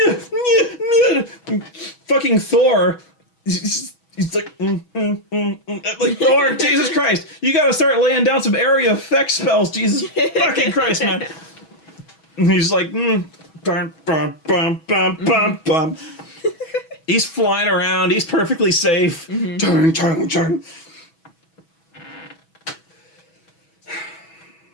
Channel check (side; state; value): right; late; 6.2 ms